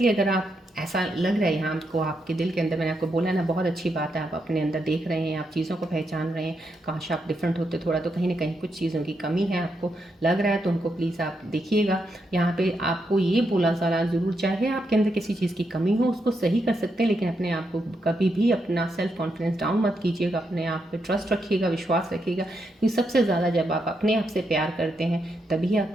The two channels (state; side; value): normal; both; correlation 0.82